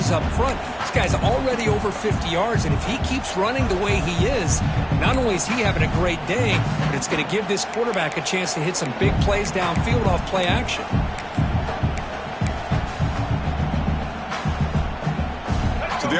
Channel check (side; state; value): both; identical; correlation 1.00